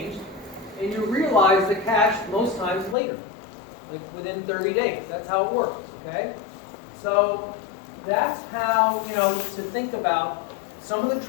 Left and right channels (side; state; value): right; drops out; at 3.0 s